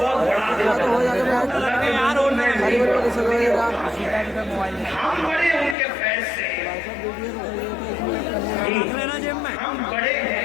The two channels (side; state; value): right; drops out; at 5.8 s